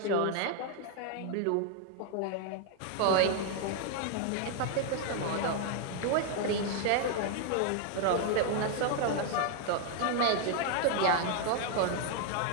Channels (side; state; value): both; different; correlation 0.00